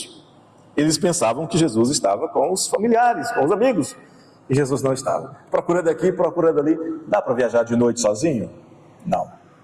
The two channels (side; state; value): both; identical; correlation 1.00